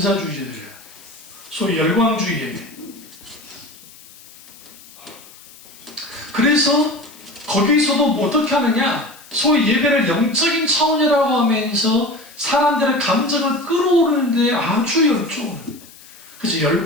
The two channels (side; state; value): left; noise; hiss, 22 dB below the sound